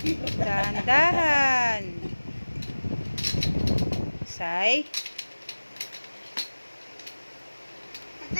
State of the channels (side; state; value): both; inverted; correlation -1.00